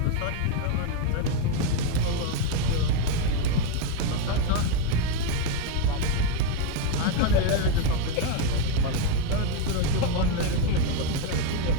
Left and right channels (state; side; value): different; both; correlation 0.02